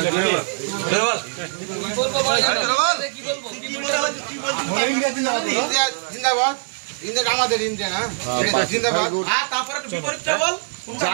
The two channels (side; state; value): left; silent; 57 dB below the other